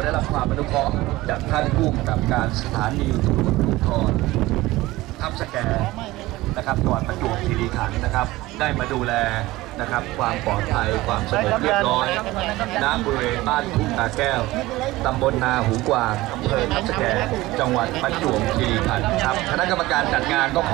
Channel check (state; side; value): quieter; left; 18.6 dB